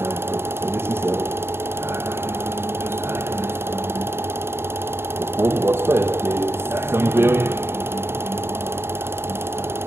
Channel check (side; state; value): left; late; 0.12 ms